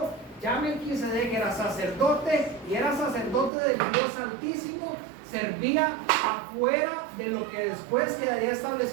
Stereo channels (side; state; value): left; drops out; at 3.5 s